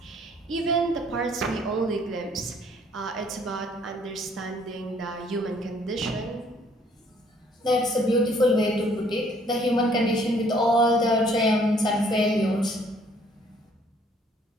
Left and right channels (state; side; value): normal; both; correlation 0.62